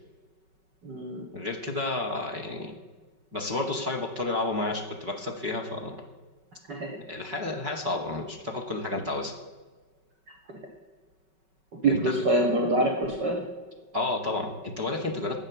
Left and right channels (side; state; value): left; late; 5.3 ms